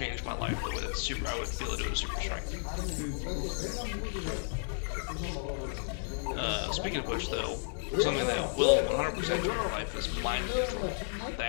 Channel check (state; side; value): silent; right; digital silence